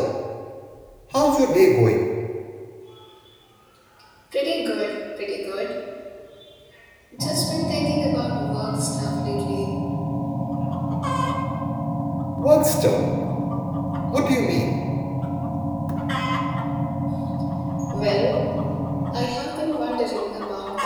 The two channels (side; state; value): both; identical; correlation 1.00